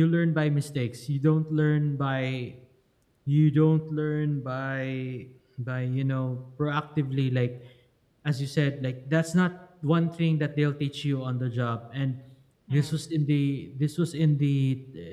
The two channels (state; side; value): identical; both; correlation 1.00